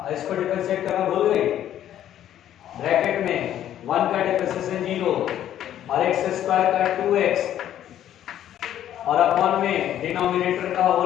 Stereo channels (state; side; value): quieter; right; 11.3 dB